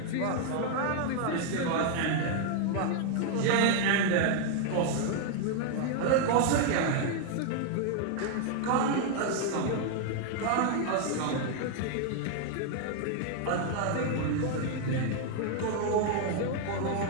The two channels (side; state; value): both; different; correlation 0.00